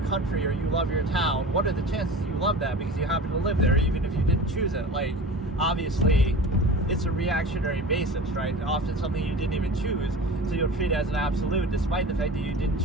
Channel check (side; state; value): both; normal; correlation 0.35